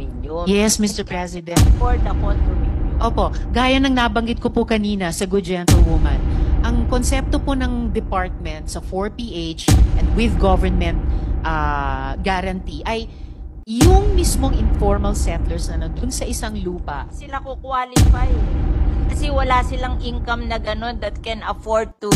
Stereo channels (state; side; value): identical; both; correlation 1.00